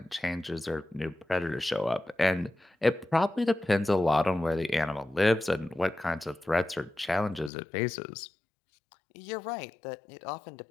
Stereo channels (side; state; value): right; drops out; at 7.5 s